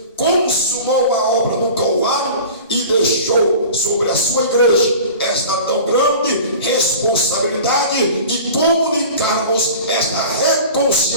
consumou a obra no Calvário e deixou sobre a sua igreja esta tão grande responsabilidade de comunicarmos esta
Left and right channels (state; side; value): inverted; both; correlation -0.39